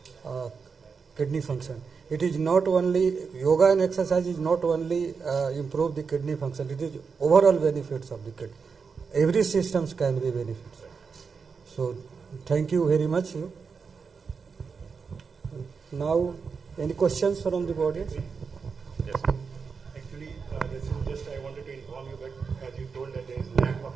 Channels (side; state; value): left; quieter; 5.4 dB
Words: kidney function. It is not only yoga and exercise is not only improve the kidney function. It is overall benefits of the kidney. Every systems can be benefits. So thank you very much. Now, any questions from the audience? Yes. Actually, this is just I wanted to inform you that as you told that there is lack of